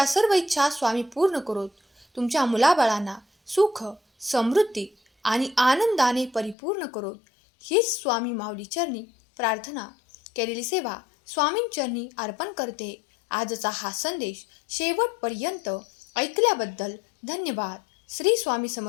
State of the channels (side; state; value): right; drops out; at 6.6 s